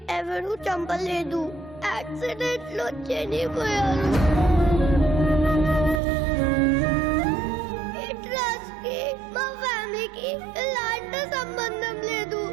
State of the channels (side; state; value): left; drops out; at 6.0 s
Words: ఎవరూ చంపలేదు. యాక్సిడెంట్ లో చనిపోయారు. ఈ ట్రస్ట్ కి మా ఫ్యామిలీకి ఎలాంటి సంబంధం లేదు.